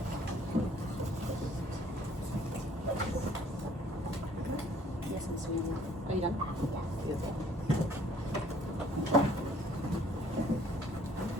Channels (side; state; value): both; normal; correlation 0.59